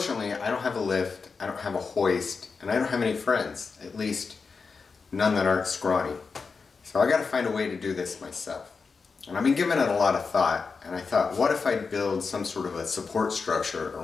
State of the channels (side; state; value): right; quieter; 4.9 dB